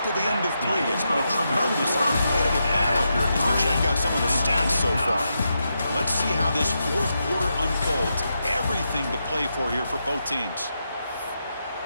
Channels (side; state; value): both; inverted; correlation -0.85